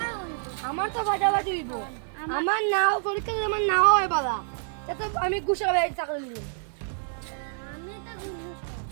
হইব আমার তো বাজাবাজি হইব। আমার নাও পরীক্ষা যদি আমার নাও হয় বালা তো আমি গুছাবে চাকরি নিব। আমি তো ঘুষ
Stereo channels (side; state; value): left; silent; 60 dB below the other